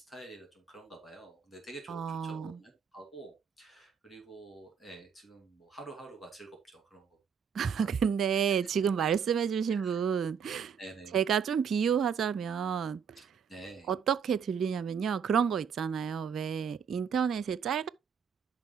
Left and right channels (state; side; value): quieter; left; 7.0 dB